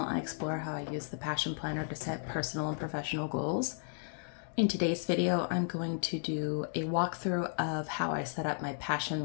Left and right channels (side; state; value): right; silent; 55 dB below the other